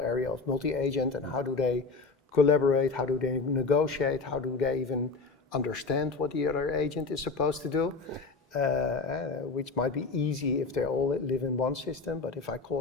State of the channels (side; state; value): right; quieter; 4.2 dB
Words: of multi-agent and how do they collaborate, how do they negotiate, how do they even understand what the other agent is supposed to do, which might be easy if they all live in one system, but if I